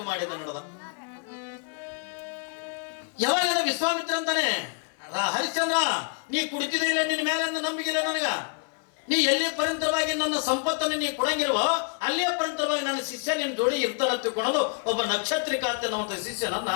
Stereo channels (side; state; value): right; quieter; 34.0 dB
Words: ಮಾಡಿದ ನಡೆದ. ಯಾವಾಗ ವಿಶ್ವಾಮಿತ್ರ ಅಂತಾನೆ, ಹರಿಶ್ಚಂದ್ರ ನೀ ಕುಡಿತಿದ್ರೆ ಇಲ್ಲ, ನಿನ್ನ ಮೇಲೆ ನಂಬಿಕಿಲ್ಲ ನನಗ. ನೀ ಎಲ್ಲಿ ಪರಂತರವಾಗಿ ನನ್ನ ಸಂಪತ್ತನ್ನು ನೀ ಕೊಡಂಗಿಲ್ವೋ ಅಲ್ಲೇ ಪರಂತರವಾಗಿ ನನ್ನ ಶಿಷ್ಯ ನಿನ್ನ ಜೋಡಿ ಇರ್ತಾನ ತಿಳ್ಕೊಳ್ಳೋದು ಒಬ್ಬ ನಕ್ಷತ್ರಿಕ ಅಂತ ನಮ್ಮ ಶಿಷ್ಯನನ್ನ